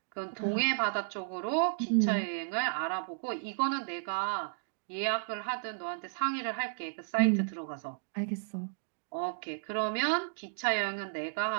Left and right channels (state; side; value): silent; left; digital silence